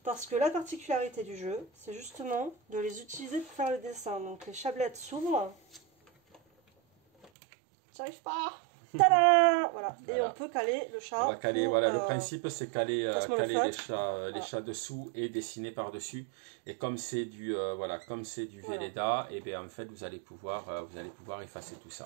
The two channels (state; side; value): drops out; left; at 7.3 s